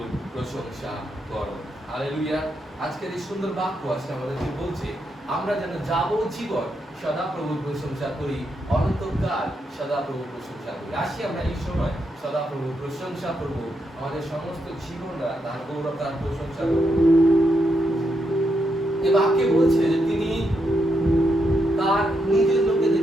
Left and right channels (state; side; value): normal; both; correlation 0.81